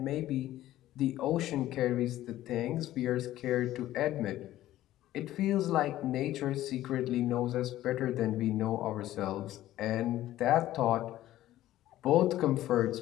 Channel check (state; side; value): quieter; right; 14.3 dB